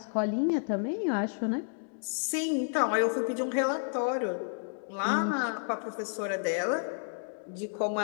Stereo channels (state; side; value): silent; right; digital silence